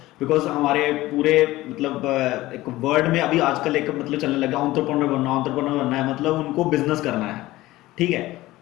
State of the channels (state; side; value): quieter; right; 17.6 dB